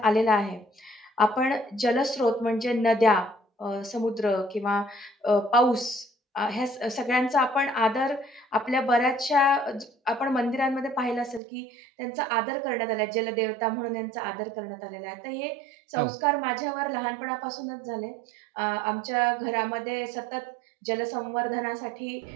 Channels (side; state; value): left; drops out; at 11.4 s